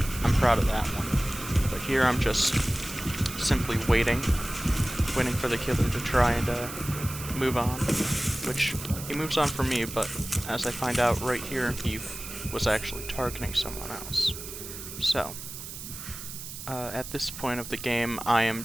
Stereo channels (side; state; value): right; noise; hiss, 10 dB below the sound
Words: I'm proud of that one. But here I'm just simply waiting for the killer to try and move on, which he moves on for me, but as I find out right here, he was actually targeting someone else. So, at this point of the game, I am